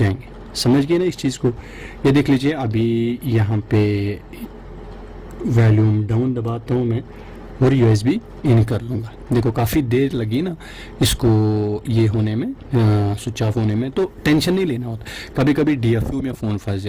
समझ गए ना इस चीज़ को। ये देख लीजिए, अभी यहाँ पे वॉल्यूम डाउन दबाता हूँ मैं और USB इन कर लूँगा। देखो काफ़ी देर लगी ना इसको ये होने में, स्विच ऑफ होने में, तो टेंशन नहीं लेना होता। कभी कभी DFU में फ़ोन फंस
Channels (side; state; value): both; identical; correlation 1.00